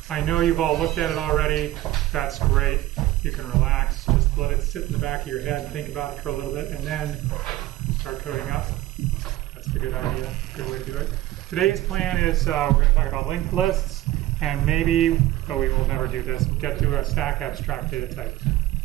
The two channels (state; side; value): quieter; left; 15.6 dB